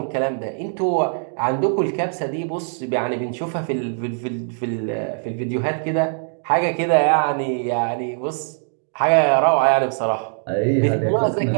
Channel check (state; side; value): silent; left; digital silence